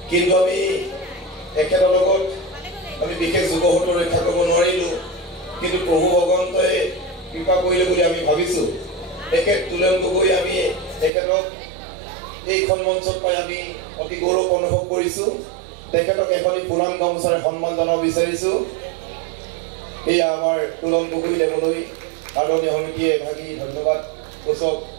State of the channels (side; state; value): left; drops out; at 11.1 s